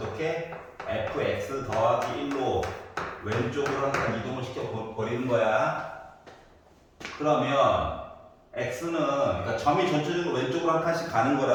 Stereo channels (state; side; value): identical; both; correlation 1.00